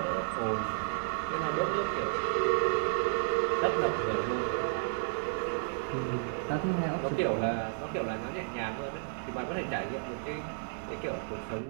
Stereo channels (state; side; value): silent; left; digital silence